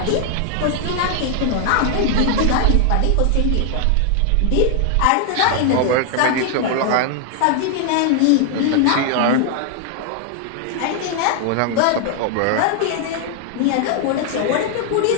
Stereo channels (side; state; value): both; different; correlation 0.00